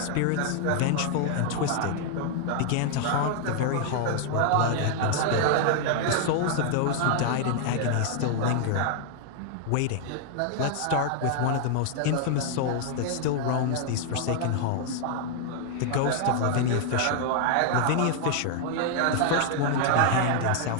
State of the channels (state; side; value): different; both; correlation -0.01